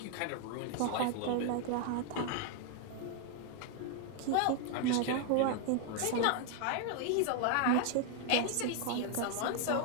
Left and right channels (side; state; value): both; different; correlation 0.00